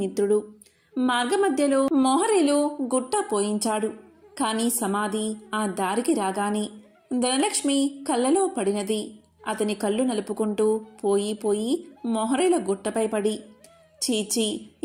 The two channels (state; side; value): identical; both; correlation 1.00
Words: మార్గమధ్యలో మోహరీలు గుట్ట పోయించాడు. కాని సమాధి ఆ దారికి రాగానే ధనలక్ష్మి కళ్ళలో పడినది. అతని కళ్ళు నలుపుకుంటూ పోయి పోయి మోహరీల గుట్టపై పడి, చీచి,